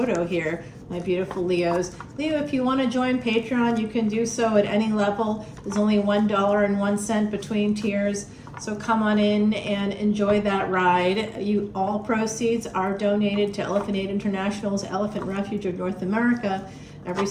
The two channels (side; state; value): both; identical; correlation 1.00